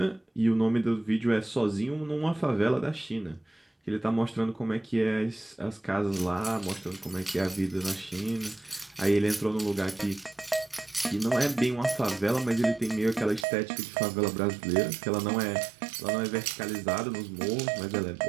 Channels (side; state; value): left; drops out; at 13.5 s